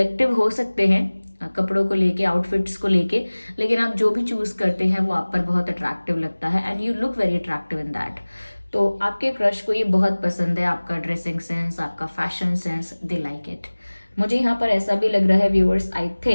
हो सकते हैं कपड़ों को लेके, आउटफिट्स को लेके, लेकिन आप जो भी चूज़ करते हैं वो आप पर बहुत अट्रैक्टिव लगता है and you look very attractive in that. तो आपके क्रश को ये बहुत पसंद है, आपका ड्रेसिंग सेंस, आपका fashion sense, they like it. मुझे यहाँ पर ऐसा भी लग रहा है viewers, I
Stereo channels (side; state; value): both; inverted; correlation -1.00